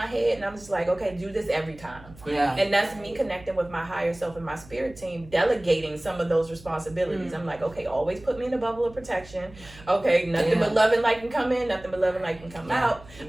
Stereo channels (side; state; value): right; noise; hum, 21 dB below the sound